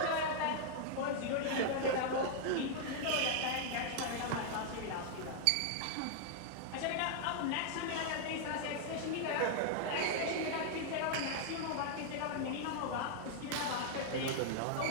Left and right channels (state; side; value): different; both; correlation 0.00